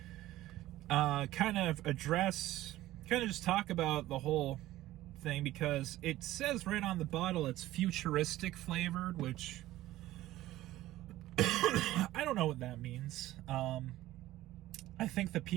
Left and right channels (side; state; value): left; quieter; 15.6 dB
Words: kind of just talk about the whole thing, because it says right on the bottle it's futuristic flavored, which I don't know what that means. I think the